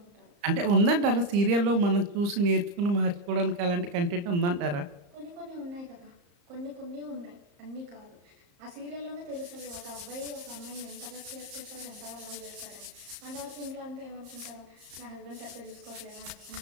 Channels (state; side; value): late; left; 34 ms